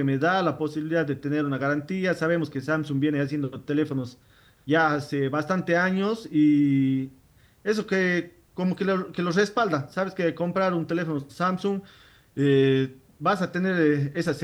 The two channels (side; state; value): both; identical; correlation 1.00